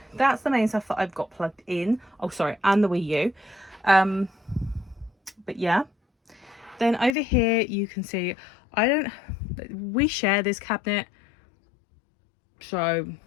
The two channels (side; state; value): right; drops out; at 7.2 s